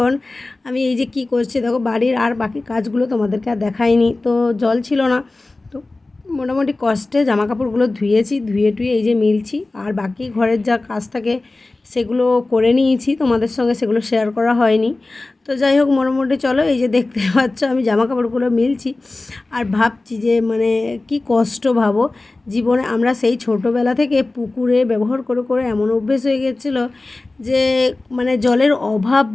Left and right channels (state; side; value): quieter; right; 3.1 dB